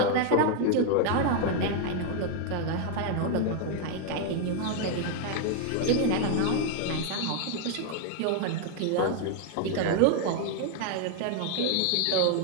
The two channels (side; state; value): both; different; correlation 0.00